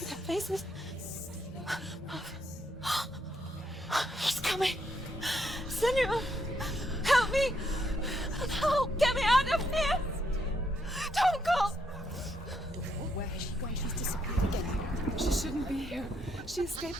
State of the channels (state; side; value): normal; both; correlation 0.76